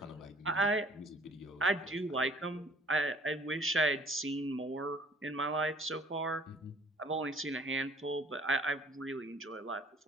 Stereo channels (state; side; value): normal; both; correlation 0.56